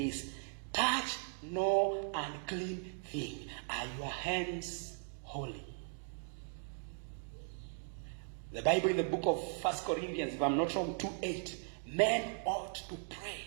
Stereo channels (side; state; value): left; silent; 52 dB below the other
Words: Touch no unclean thing. Are your hands holy? The Bible in the book of 1 Corinthians, if I'm not wrong, 2:8, men ought to pray,